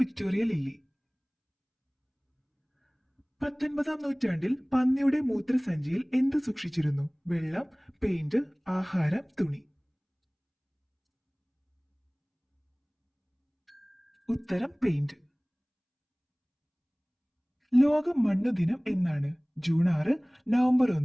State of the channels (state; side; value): identical; both; correlation 1.00